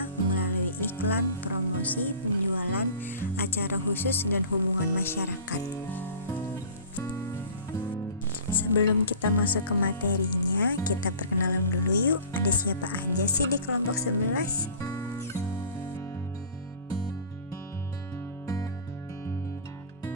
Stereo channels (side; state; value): both; inverted; correlation -0.42